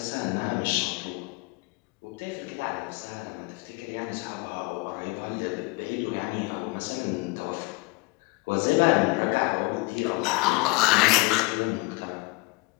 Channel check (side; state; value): right; quieter; 25.3 dB